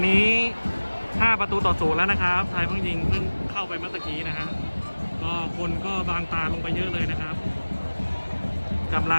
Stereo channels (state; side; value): inverted; both; correlation -1.00